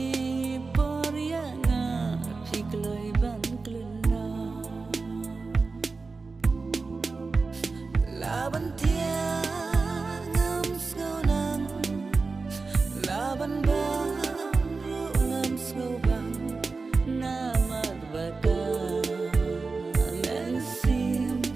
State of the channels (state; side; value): quieter; left; 4.1 dB